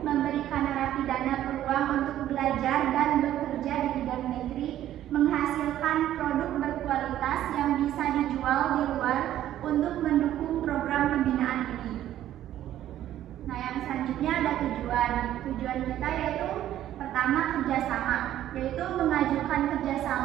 memberikan narapidana peluang untuk belajar dan bekerja di bidang negeri, menghasilkan produk berkualitas yang bisa dijual di luar untuk mendukung program pembinaan ini. Nah, yang selanjutnya ada tujuan kita, yaitu pertama kerjasama, yaitu mengajukan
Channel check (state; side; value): quieter; left; 12.4 dB